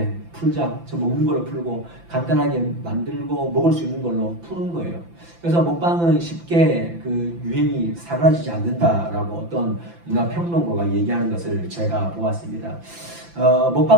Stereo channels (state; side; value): late; left; 5.9 ms